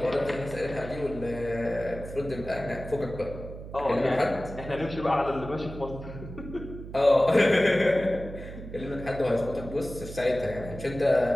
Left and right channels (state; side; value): noise; right; hum, 12 dB below the sound